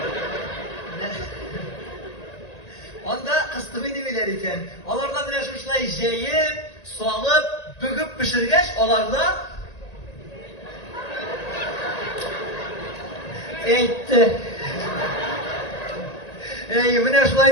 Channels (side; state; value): right; late; 1.9 ms